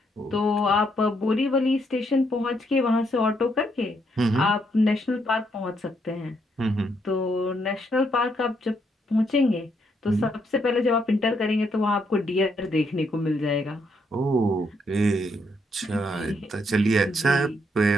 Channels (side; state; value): both; normal; correlation 0.75